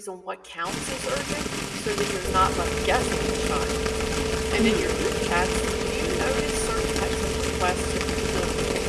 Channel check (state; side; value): identical; both; correlation 1.00